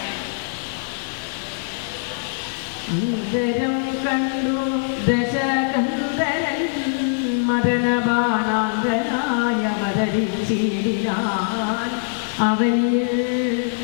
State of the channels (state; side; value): silent; right; 58 dB below the other